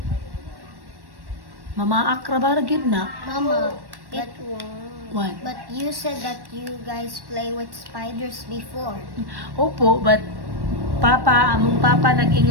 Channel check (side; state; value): left; late; 1.1 ms